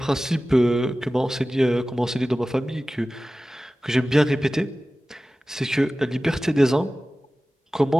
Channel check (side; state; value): both; normal; correlation 0.96